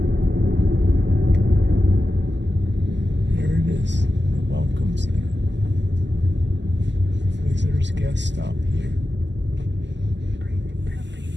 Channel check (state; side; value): late; left; 0.52 ms